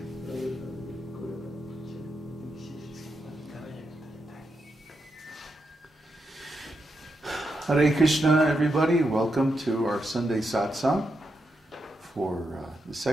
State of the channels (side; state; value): both; normal; correlation 0.84